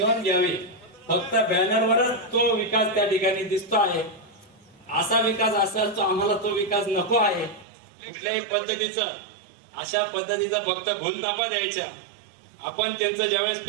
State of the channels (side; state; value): left; drops out; at 7.7 s